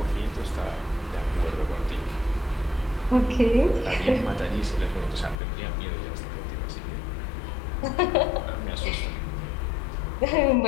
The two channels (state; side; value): drops out; right; at 5.4 s